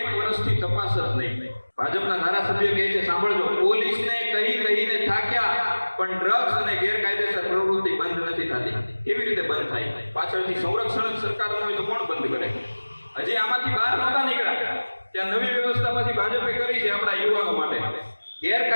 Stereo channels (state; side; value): inverted; both; correlation -1.00